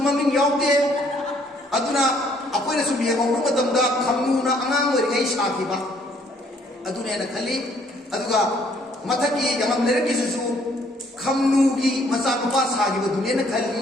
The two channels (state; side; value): normal; both; correlation 0.64